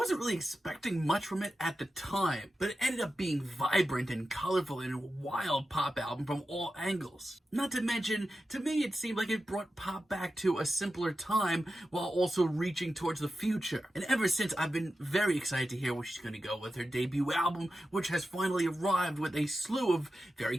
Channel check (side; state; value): both; normal; correlation 0.92